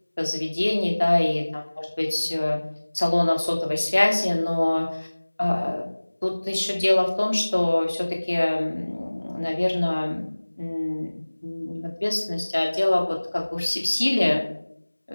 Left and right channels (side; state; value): both; inverted; correlation -1.00